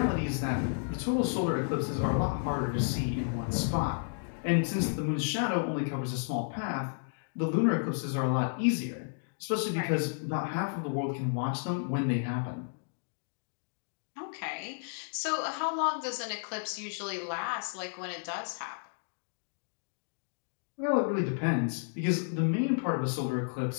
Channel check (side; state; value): right; silent; digital silence